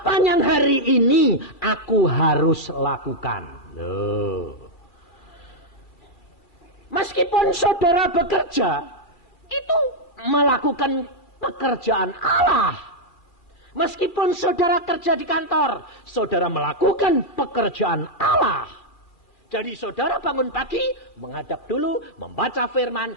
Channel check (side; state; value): right; late; 2.7 ms